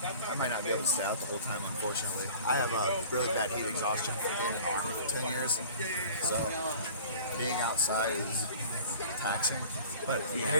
I might not be able to stay out the whole time, unfortunately. I have a really bad heat exhaustion from being in the Army for 10 years. So being outside is taxing. But I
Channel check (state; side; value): inverted; both; correlation -0.44